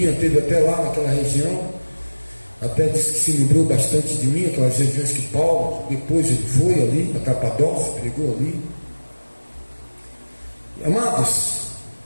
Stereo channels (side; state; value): both; inverted; correlation -1.00